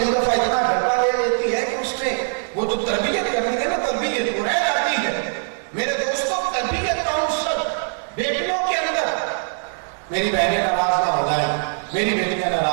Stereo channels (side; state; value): left; silent; 64 dB below the other